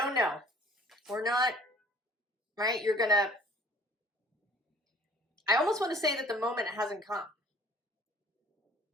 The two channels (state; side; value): normal; both; correlation 0.52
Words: know. We're not, right? You're gonna, I almost want to say that the moment hasn't come.